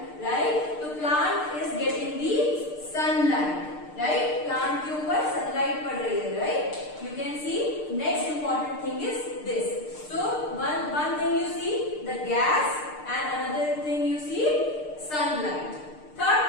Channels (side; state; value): right; late; 6.6 ms